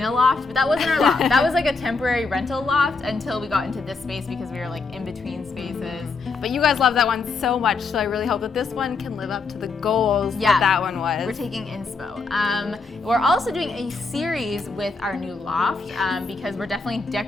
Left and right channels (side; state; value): right; quieter; 4.2 dB